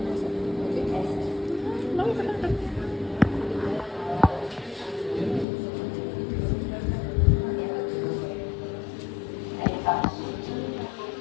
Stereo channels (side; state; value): right; drops out; at 5.5 s